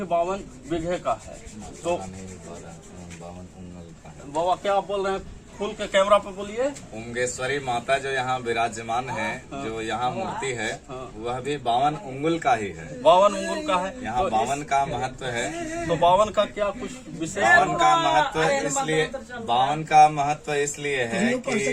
52 बीघे का है। तो बाबा क्या आप बोल रहे हैं? फुल के कैमरा पे बोलिए। उमगेश्वरी माता जो यहाँ विराजमान है, जो यहाँ मूर्ति है, वह भी 52 उंगुल का ही है। 52 उंगुल का है। यहाँ तो 52 का महत्व है। तो 52 का क्या कुछ विशेष? 52 का महत्व इसलिए 52 का महत्व इसलिए है कि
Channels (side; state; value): both; identical; correlation 1.00